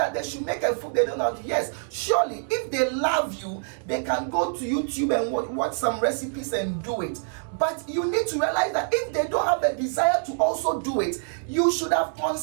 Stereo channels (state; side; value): silent; left; 61 dB below the other